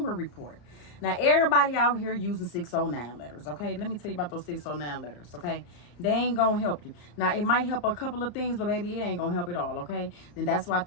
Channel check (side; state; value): right; late; 34 ms